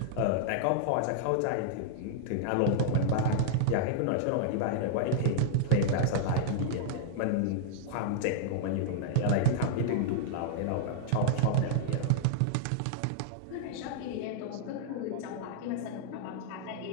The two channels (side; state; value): both; different; correlation -0.01